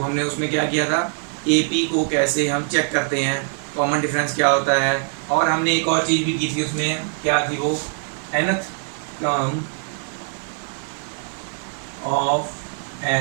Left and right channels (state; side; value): silent; left; 56 dB below the other